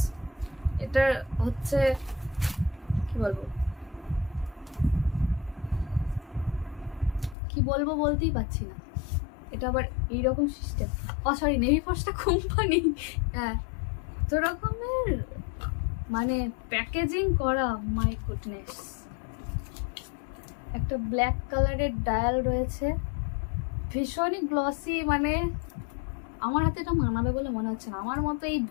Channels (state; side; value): drops out; right; at 7.4 s